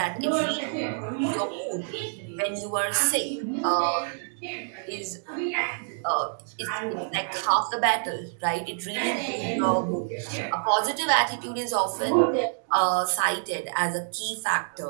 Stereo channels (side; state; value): left; silent; digital silence